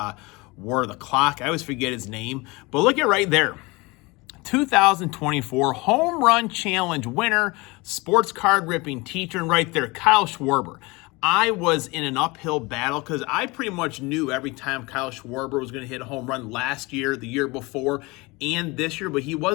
wore the clock. I always forget his name, but look at right there. 2024 Home Run Challenge winner, Sports Card Ripping Teacher, and right there, Kyle Schwarber. I was in an uphill battle because I pretty much knew every time Kyle Schwarber was going to hit a home run last year, the year before, and this year, but he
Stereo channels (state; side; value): quieter; right; 24.5 dB